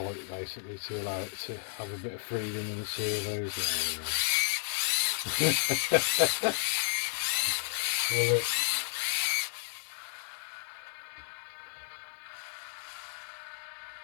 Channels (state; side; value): silent; right; digital silence